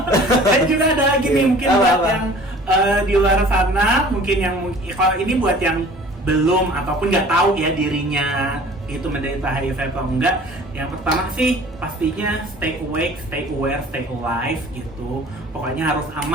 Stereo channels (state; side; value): normal; both; correlation 0.47